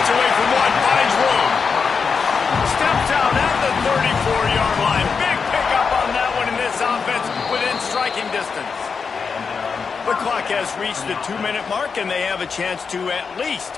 away from one, finds room. Steps out at the 34-yard line. Big pickup on that one in this offense within striking distance. The clock has reached the 2-minute mark, and they have a chance to at least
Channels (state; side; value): quieter; right; 5.5 dB